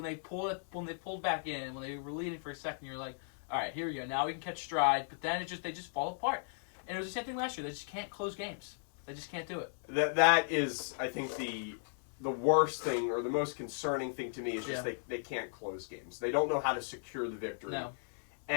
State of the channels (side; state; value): right; silent; 54 dB below the other